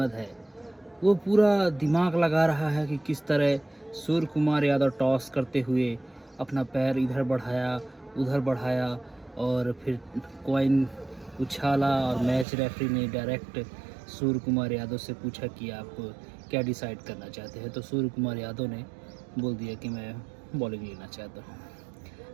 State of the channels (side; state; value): left; drops out; at 12.5 s